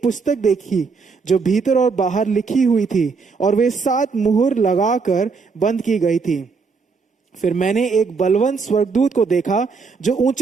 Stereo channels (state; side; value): quieter; left; 4.9 dB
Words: पुस्तक देखी जो भीतर और बाहर लिखी हुई थी, और वे 7 मुहर लगाकर बंद की गई थी। फिर मैंने एक बलवंत स्वर्गदूत को देखा जो